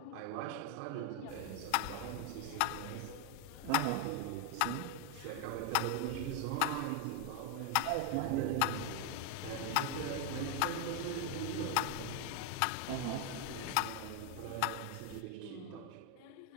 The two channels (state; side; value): different; both; correlation 0.01